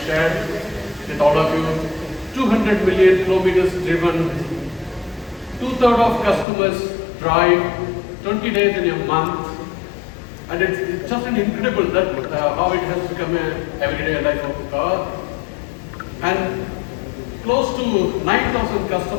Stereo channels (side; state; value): right; drops out; at 6.5 s